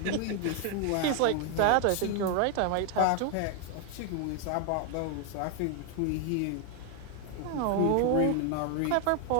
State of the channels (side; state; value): both; different; correlation 0.00